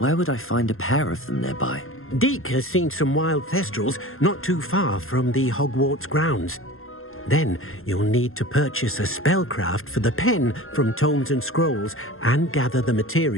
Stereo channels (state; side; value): late; right; 0.61 ms